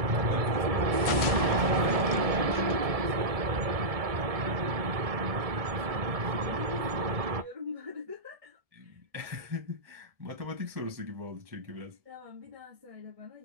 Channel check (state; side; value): late; left; 1.7 ms